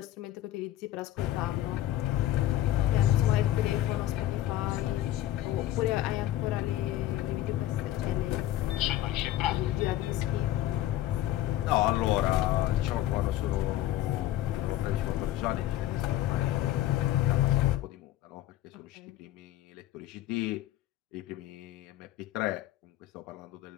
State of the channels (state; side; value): quieter; right; 13.8 dB